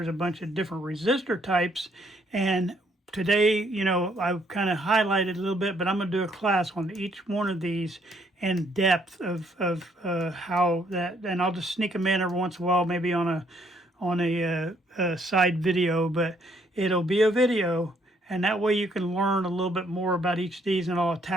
a bunch of different resistor types, and today, I've kind of highlighted a little bit, but I'm going to do a class on each one of these in depth of how that, and I'll just sneak them in every once in a while, maybe on a side video, but it'll be a video, and that way you can learn a little bit more about each of these, and I'll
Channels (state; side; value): normal; both; correlation 0.68